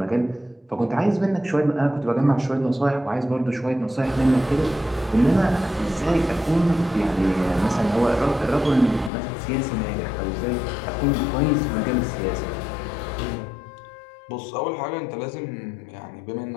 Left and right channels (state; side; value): drops out; right; at 9.1 s